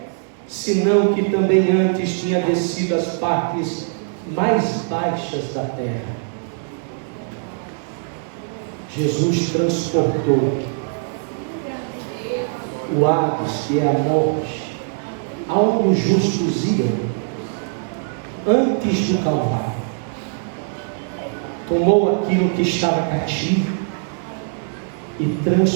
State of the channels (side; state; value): left; silent; digital silence